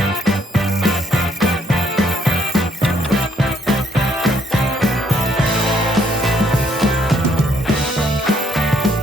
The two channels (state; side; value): normal; both; correlation 0.69